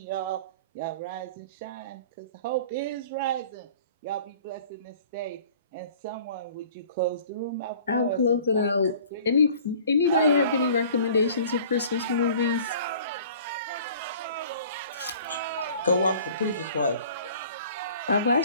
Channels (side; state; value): both; inverted; correlation -0.48